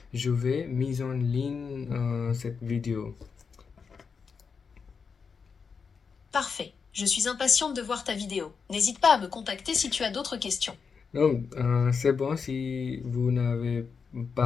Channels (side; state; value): right; quieter; 5.6 dB